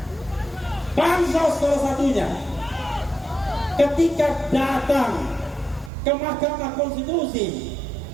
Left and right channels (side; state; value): left; drops out; at 5.9 s